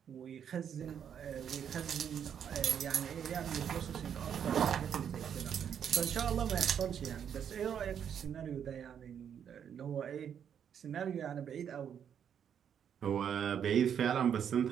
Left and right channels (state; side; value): quieter; left; 8.4 dB